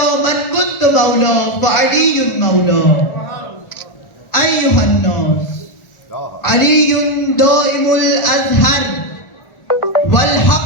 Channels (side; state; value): right; late; 1.4 ms